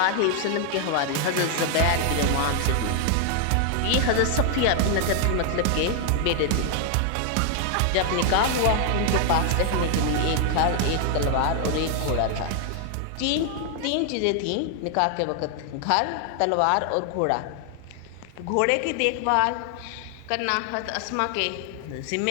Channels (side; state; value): both; different; correlation 0.00